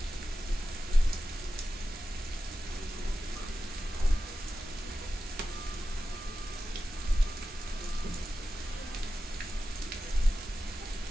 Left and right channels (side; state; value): both; normal; correlation 0.93